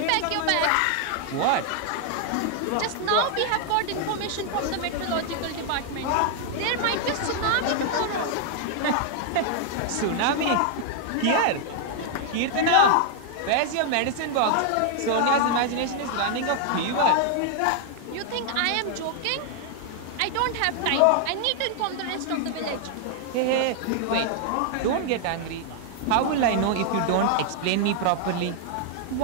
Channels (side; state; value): both; different; correlation 0.00